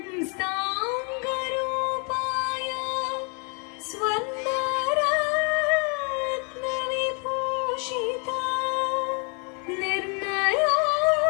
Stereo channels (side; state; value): right; quieter; 36.6 dB